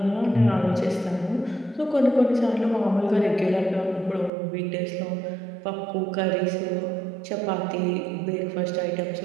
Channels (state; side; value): drops out; left; at 4.3 s